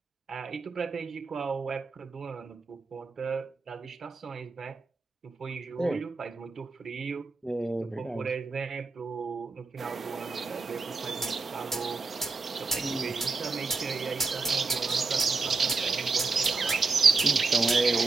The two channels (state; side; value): quieter; left; 4.1 dB